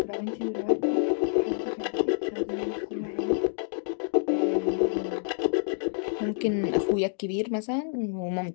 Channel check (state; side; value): silent; right; digital silence